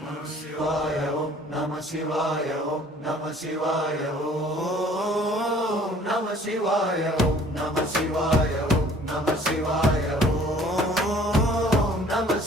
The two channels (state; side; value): normal; both; correlation 0.54